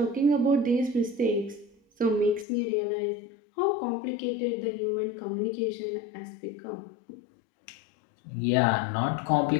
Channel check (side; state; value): right; drops out; at 2.5 s